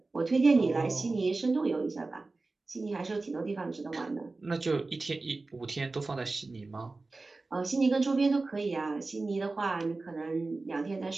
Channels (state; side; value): quieter; left; 3.5 dB